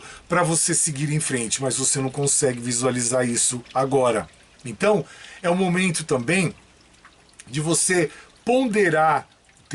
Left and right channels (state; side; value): identical; both; correlation 1.00